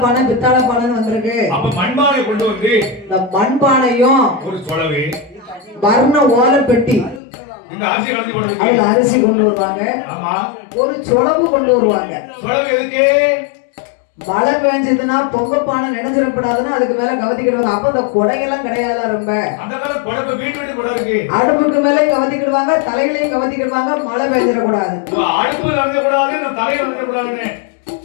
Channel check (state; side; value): drops out; right; at 7.2 s